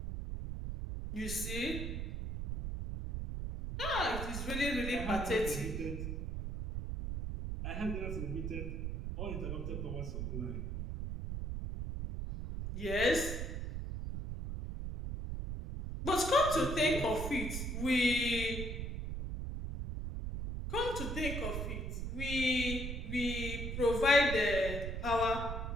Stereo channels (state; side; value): noise; right; rumble, 4 dB below the sound